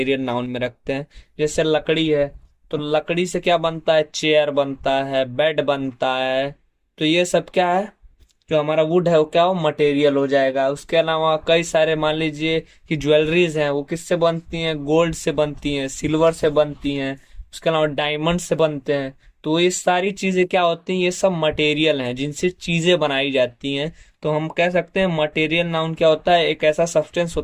नाउन में रखते हैं। जैसे लकड़ी है, तो लकड़ी से क्या बनता है, चेयर बनता है, बेड बनता है। तो ये सब क्या है, जो हमारा वुड है वो क्या हो, मटेरियल हो जाएगा। उसके अलावा कई सारे मान लीजिए कि ज्वेलरीज हैं, वो किससे बनती हैं, गोल्ड से बनती हैं, सिल्वर से बनती हैं। उसके अलावा डायमंड से बनते हैं। तो ये सारी चीजें क्या होती हैं, ये सब मटेरियल हैं जिनसे चीजें बनाई जाती हैं। तो हम कह सकते हैं मटेरियल नाउन क्या होता है, एक ऐसा सब्सटेंस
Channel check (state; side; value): identical; both; correlation 1.00